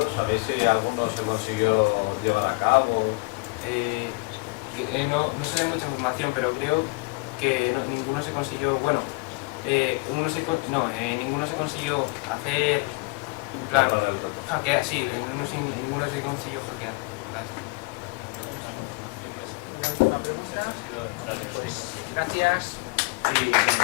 ¿sabéis si alguno se consiguió llevar a cabo? No sé de mucha información, pero creo que ninguno se consiguió, bueno, ninguno se consiguió hacer, en plan, hackear, sí, ninguno se consiguió hackear. Gracias. Sí,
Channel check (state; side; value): quieter; right; 28.8 dB